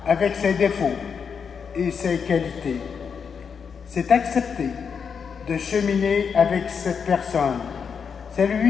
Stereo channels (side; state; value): right; quieter; 6.4 dB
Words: avec ses défauts et ses qualités. C'est accepter de cheminer avec cette personne. C'est